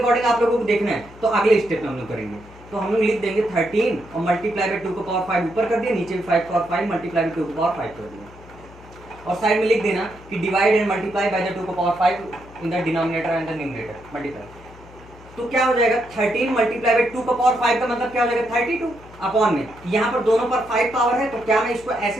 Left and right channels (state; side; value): noise; left; hum, 21 dB below the sound